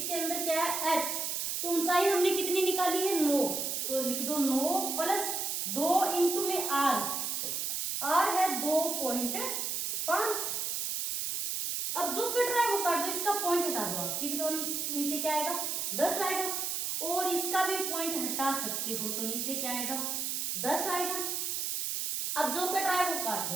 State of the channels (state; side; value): noise; right; hiss, 1 dB below the sound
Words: के अंदर क्या है h, तो ऊंचाई हमने कितनी निकाली है 9, तो लिख दो 9 प्लस 2 इंटू में आर, तो आर है 2.5। अब जो कट रहा है वो काट दो, इसका पॉइंट हटा दो आप, ठीक, तो नीचे क्या आएगा 10 आएगा, और इसका भी पॉइंट हटा सकते हो, तो नीचे क्या आएगा 10 आएगा। अब जो कट रहा है वो काट